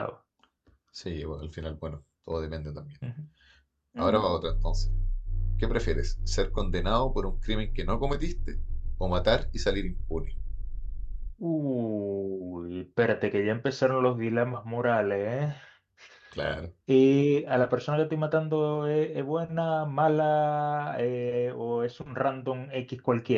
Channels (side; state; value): both; identical; correlation 1.00